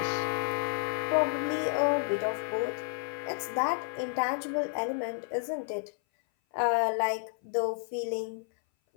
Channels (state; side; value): silent; right; 57 dB below the other